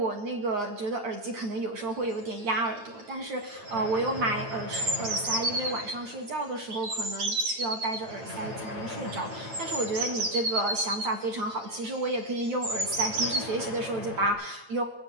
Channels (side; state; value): left; late; 8.8 ms